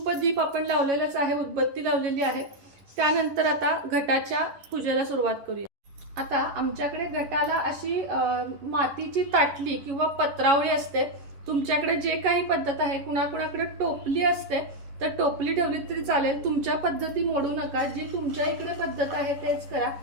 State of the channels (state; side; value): late; left; 11 ms